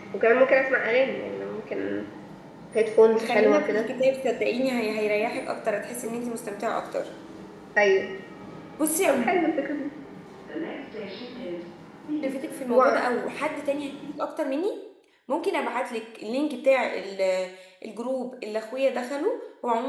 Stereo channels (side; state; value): both; identical; correlation 1.00